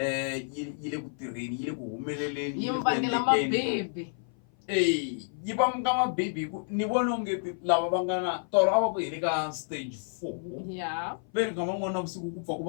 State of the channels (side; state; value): right; silent; 55 dB below the other